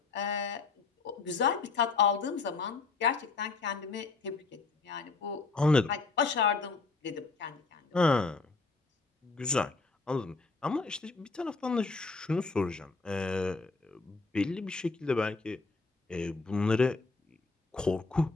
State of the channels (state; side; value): quieter; right; 4.1 dB